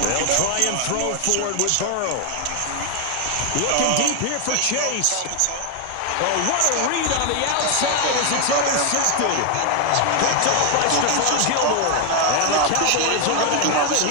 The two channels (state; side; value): different; both; correlation 0.00